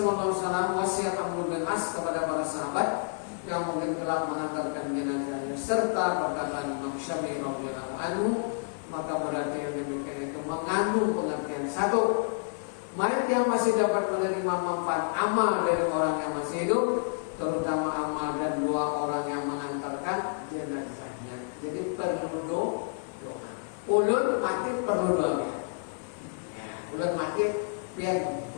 Alaihi Wasallam wasiat Abdul bin As kepada para sahabat yang mungkin telah mengantarkan jenazahnya serta perkataan Imam Syafi'i radhiyallahu anhu, maka berarti yang demikian itu mengandung pengertian satu, mayat yang masih dapat menerima manfaat amal dari orang yang masih hidup, terutama amal dan doa orang yang mengantarkan jenazahnya. Jadi perlu doa. Ulun mati perlu doa. Ya, ulun mati biar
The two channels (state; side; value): silent; right; digital silence